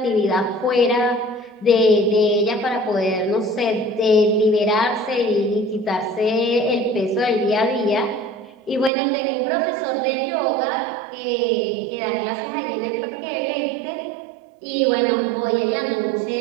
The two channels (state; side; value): drops out; left; at 8.9 s